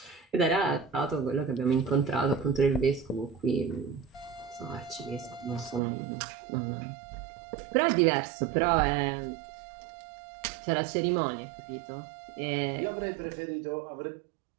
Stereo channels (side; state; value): left; drops out; at 5.8 s